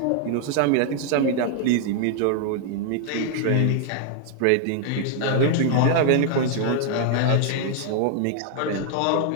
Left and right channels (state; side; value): different; both; correlation 0.00